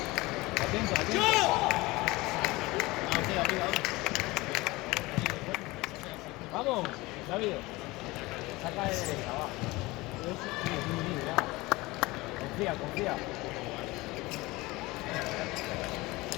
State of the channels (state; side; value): quieter; right; 21.4 dB